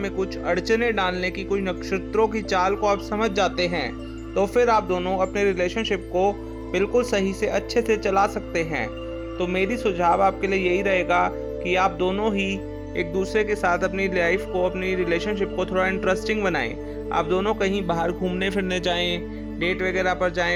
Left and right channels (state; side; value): identical; both; correlation 1.00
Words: कुछ अड़चने डालने की कोई नक्षत्रों की चाल को आप समझ जाते हैं, तो फिर आप दोनों अपने रिलेशनशिप को बिल्कुल सही से अच्छे से चला सकते हैं। तो मेरी सुझाव आपके लिए यही रहेगा कि आप दोनों ही एक दूसरे के साथ अपनी लाइफ को, अपनी रिलेशनशिप को थोड़ा इंटरेस्टिंग बनाएं। आप दोनों कहीं बाहर घूमने फिरने जाएं, डेट वगैरह पर